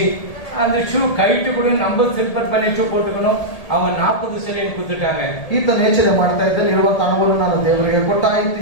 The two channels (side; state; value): right; late; 1.8 ms